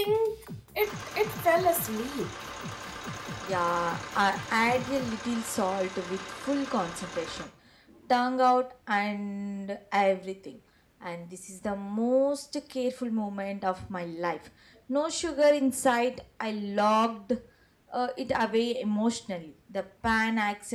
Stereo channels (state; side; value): identical; both; correlation 1.00